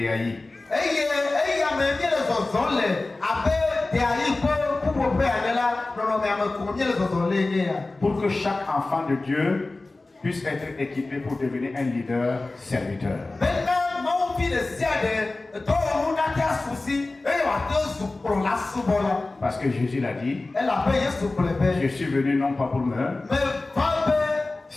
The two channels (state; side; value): quieter; right; 3.2 dB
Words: Pour que chaque enfant de Dieu puisse être équipé pour devenir un leader serviteur. Parce que Jésus l'a dit, je suis venu non pas pour me